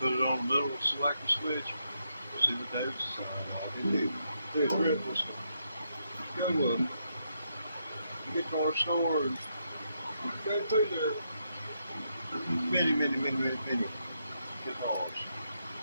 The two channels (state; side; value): inverted; both; correlation -0.80